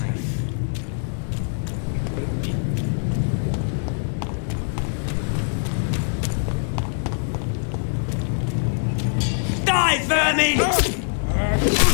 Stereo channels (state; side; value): silent; right; digital silence